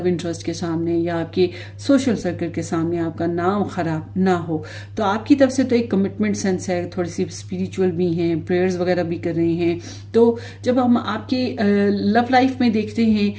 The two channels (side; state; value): both; identical; correlation 1.00